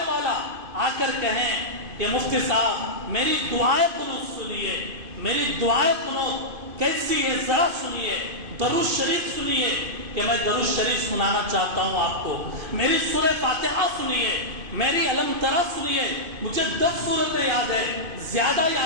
والا آ کر کہیں کہ مفتی صاحب میری دعائیں قنوت سنیے، میری دعائیں قنوت کیسی ہے ذرا سنیے، درود شریف سنیے، کہ میں درود شریف سنانا چاہتا ہوں آپ کو، میری سورہ فاتحہ سنیے، میری علم ترا سنیے، مجھے 10 سورتیں یاد ہے، زیادہ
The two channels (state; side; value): late; left; 2.5 ms